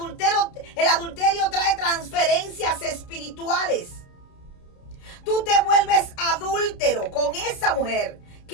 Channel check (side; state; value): right; late; 30 ms